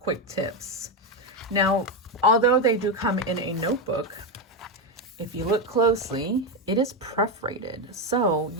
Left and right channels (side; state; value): both; normal; correlation 0.09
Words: tips. Now, although they do come in a notebook, if you look closely, it is perforated. So